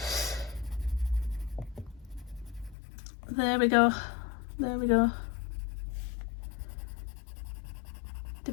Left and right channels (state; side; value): drops out; right; at 2.8 s